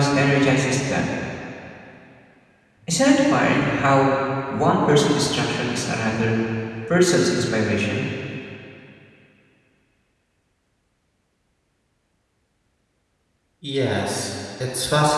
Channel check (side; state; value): both; identical; correlation 1.00